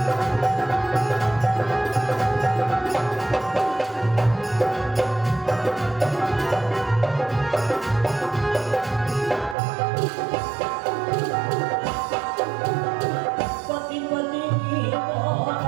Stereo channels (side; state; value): left; drops out; at 9.6 s